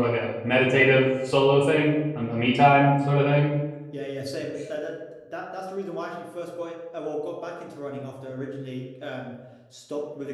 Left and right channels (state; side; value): identical; both; correlation 1.00